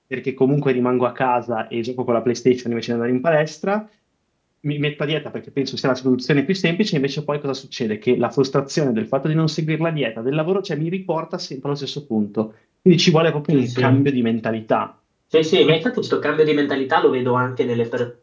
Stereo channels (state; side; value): identical; both; correlation 1.00